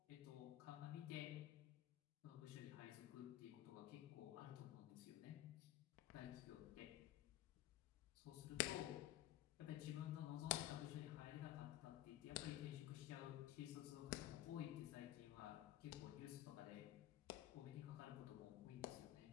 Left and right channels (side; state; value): right; quieter; 13.6 dB